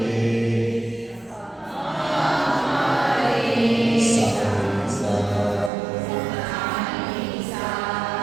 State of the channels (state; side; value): drops out; left; at 5.7 s